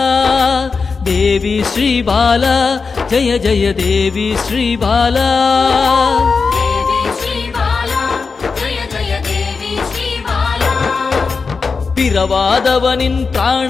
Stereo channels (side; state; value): right; quieter; 4.8 dB